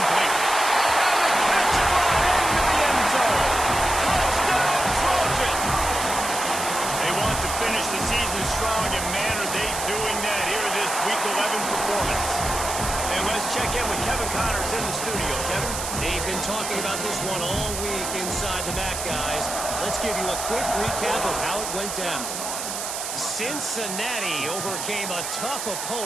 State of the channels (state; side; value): noise; right; hiss, 5 dB below the sound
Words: And the catch right into the end zone. Touchdown, Trojans! They want to finish the season strong, and man, are they doing that here this Week 11 performance. And let's check in with Kevin Connors in the studio. Kevin? They've been talking about this one all week inside the MAC, guys. Let's give you a quick recap of how it went down. Cincinnati overcame a tough